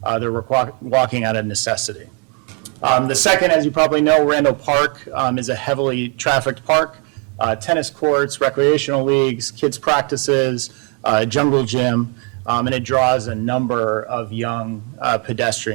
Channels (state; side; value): quieter; left; 34.2 dB